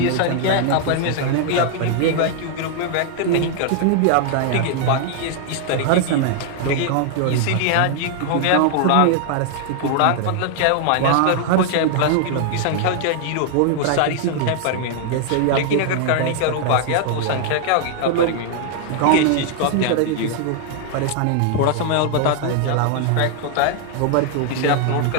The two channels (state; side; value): different; both; correlation 0.00